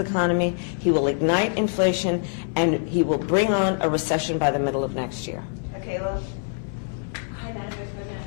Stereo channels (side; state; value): right; silent; 62 dB below the other